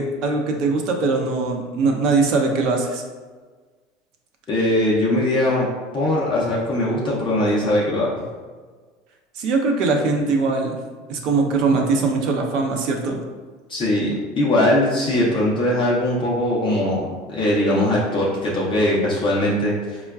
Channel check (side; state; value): both; normal; correlation 0.42